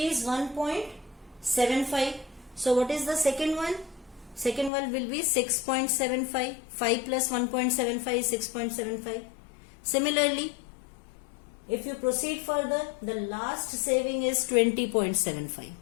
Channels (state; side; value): drops out; right; at 4.7 s